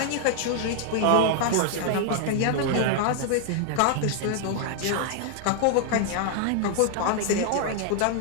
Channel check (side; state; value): both; different; correlation 0.00